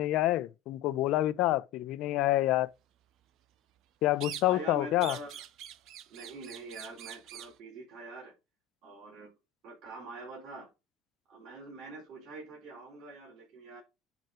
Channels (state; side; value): quieter; right; 11.9 dB